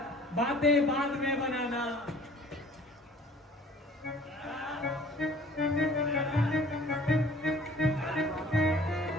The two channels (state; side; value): normal; both; correlation 0.51